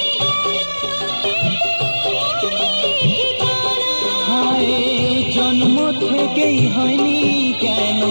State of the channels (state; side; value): inverted; both; correlation -1.00